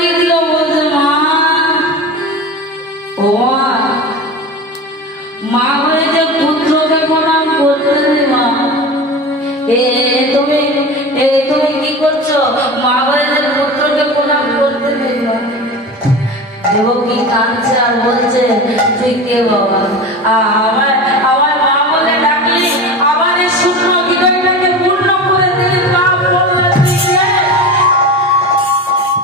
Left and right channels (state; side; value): normal; both; correlation 0.30